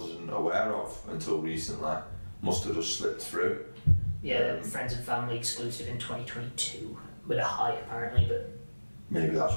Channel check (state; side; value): inverted; both; correlation -1.00